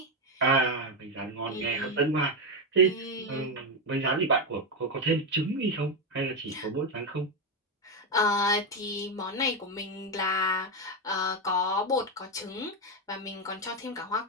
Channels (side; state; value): both; normal; correlation 0.07